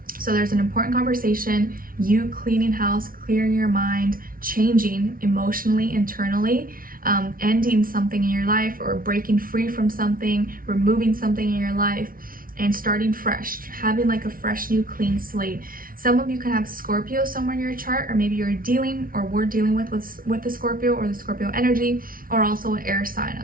So there's an important conversation, you cleaning house, clearing your mind, changing emotionally, internally, ending something in your life or breaking free from something, removing something in your life, and starting fresh, having like a fresh, new, clean slate. Some of you can have Scorpio somewhere in your chart, or maybe you're dealing, or we're dealing with the Scorpio or the Scorpio energy, or also an air sign,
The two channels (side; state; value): left; late; 0.42 ms